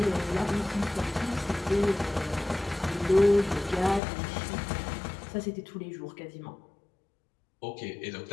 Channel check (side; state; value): right; drops out; at 4.0 s